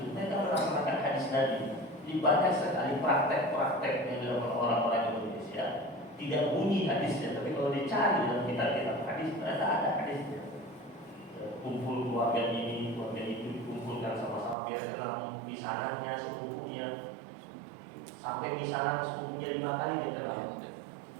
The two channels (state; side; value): drops out; left; at 14.6 s